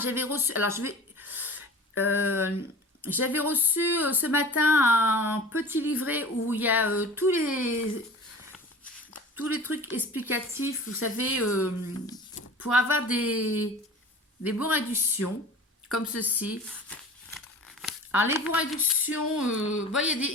j'avais reçu, alors je vais, j'avais reçu ce matin un petit livret où il y a tous les trucs explicatifs, vous savez, pour avoir des bons réductions, comme ceci. Alors, les bons réductions, bon,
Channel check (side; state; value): both; normal; correlation 0.39